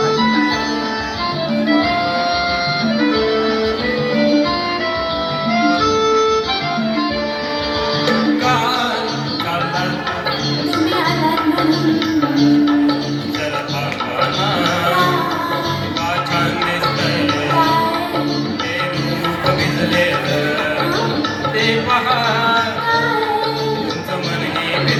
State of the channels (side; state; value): both; identical; correlation 1.00